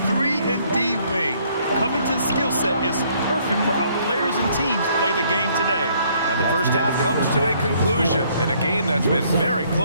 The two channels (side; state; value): both; inverted; correlation -0.65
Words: 3-and-D wing. Covington's skill set is perfect for how players and teams play the game today. And the first half comes to a conclusion in a game that's been very